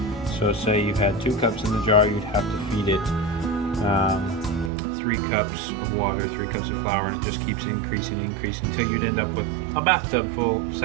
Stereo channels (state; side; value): drops out; left; at 4.7 s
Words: So say you had 2 cups in the jar, you'd have to feed it 3 cups of water, 3 cups of flour, and it just keeps increasing until you'd end up with a bathtub full of